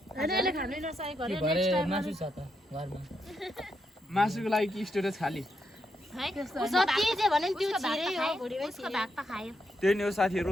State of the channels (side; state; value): both; normal; correlation 0.81